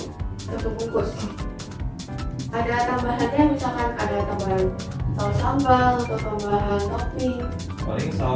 Satu bungkus. Ada tambahannya misalkan ada tambahan saus sambal atau tambahan topping? Paling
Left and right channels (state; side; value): identical; both; correlation 1.00